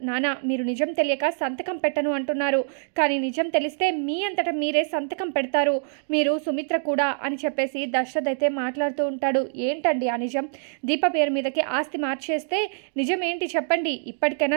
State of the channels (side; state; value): left; silent; digital silence